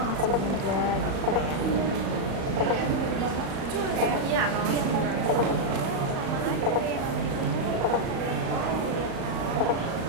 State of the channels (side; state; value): left; late; 36 ms